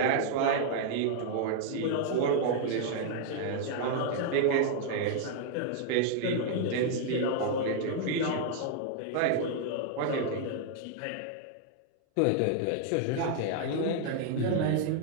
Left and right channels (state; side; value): different; both; correlation 0.00